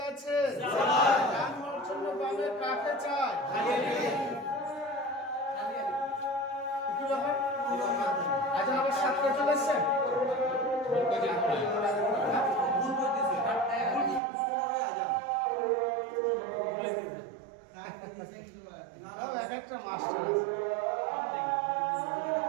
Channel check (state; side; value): drops out; left; at 14.2 s